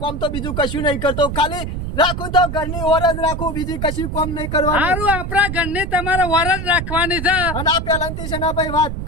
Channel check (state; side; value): noise; right; rumble, 5 dB below the sound